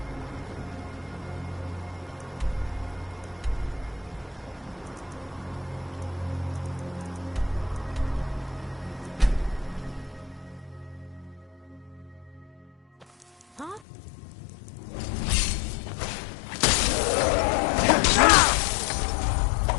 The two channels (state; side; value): drops out; right; at 13.8 s